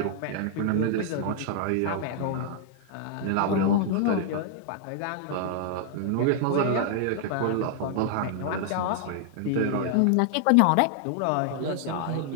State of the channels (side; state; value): both; different; correlation 0.00